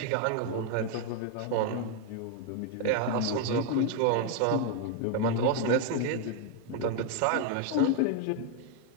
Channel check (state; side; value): different; both; correlation 0.00